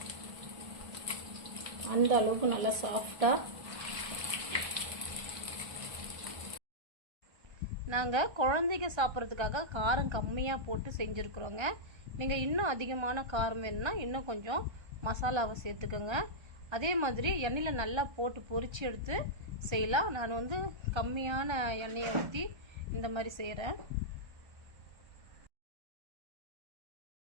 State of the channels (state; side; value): late; left; 1.3 ms